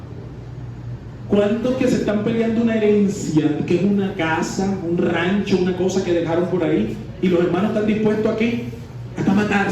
¿Cuántos que se están peleando una herencia, que es una casa, un rancho, una cosa que dejaron por ahí, y los hermanos están dispuestos a qué? Hasta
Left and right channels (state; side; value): identical; both; correlation 1.00